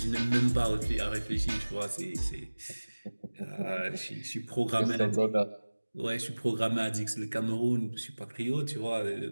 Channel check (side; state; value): both; inverted; correlation -1.00